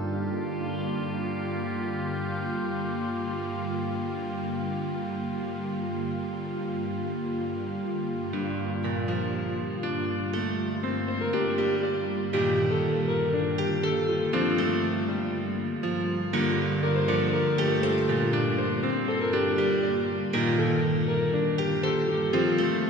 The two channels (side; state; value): both; normal; correlation 0.56